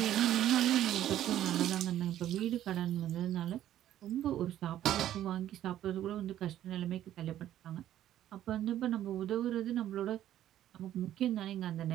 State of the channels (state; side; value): quieter; left; 12.1 dB